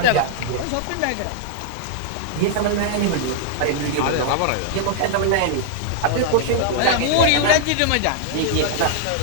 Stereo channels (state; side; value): different; both; correlation -0.01